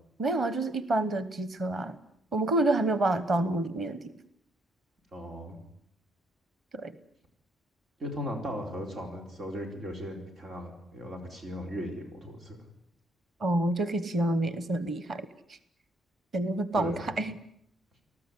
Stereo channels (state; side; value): normal; both; correlation 0.69